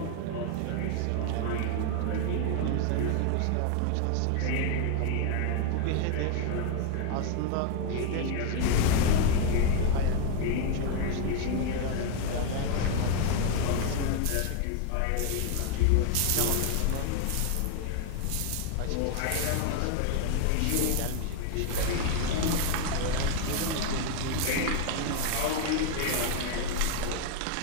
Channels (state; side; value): different; both; correlation 0.00